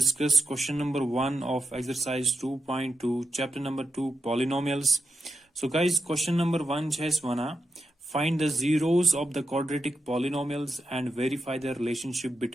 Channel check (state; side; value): normal; both; correlation 0.86